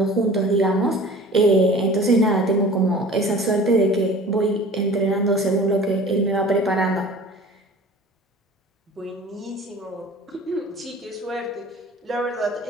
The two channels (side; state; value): both; normal; correlation 0.43